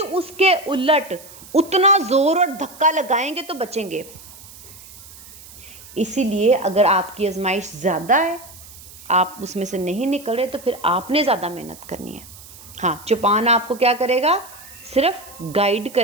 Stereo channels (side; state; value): right; noise; hiss, 19 dB below the sound